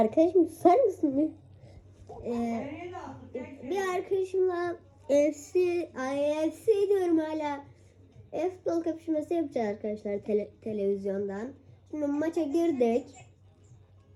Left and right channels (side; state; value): both; identical; correlation 1.00